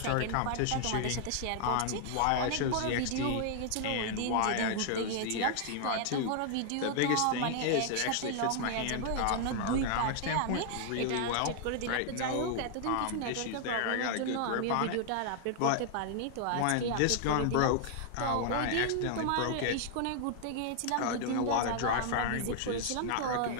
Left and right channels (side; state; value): both; different; correlation 0.00